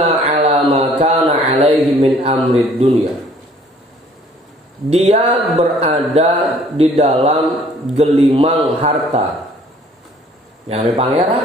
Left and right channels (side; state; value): both; normal; correlation 0.57